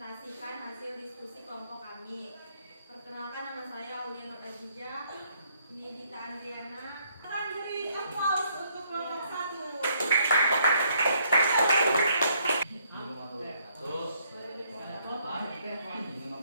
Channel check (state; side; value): inverted; both; correlation -0.69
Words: hasil diskusi kelompok kami. Perkenalkan, nama saya Aulia Nur Azizah, ini Dita Andriana. Akan beri applause untuk kelompok 1. Ini